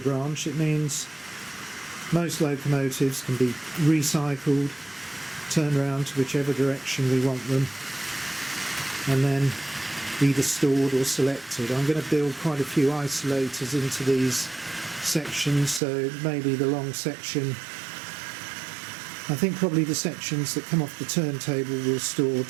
it means most locomotives can be recycled, turned around to whichever direction we want them, and then either stored or selected. I'm going to build quite a few isolators into these sections, so maybe the long section, I think probably the sections that come off the turntable will store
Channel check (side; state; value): left; drops out; at 15.8 s